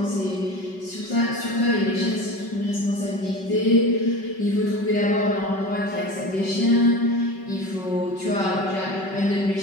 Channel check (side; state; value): right; late; 5.3 ms